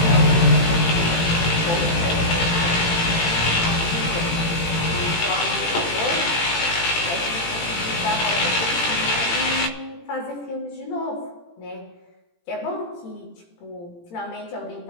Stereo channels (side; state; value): right; late; 18 ms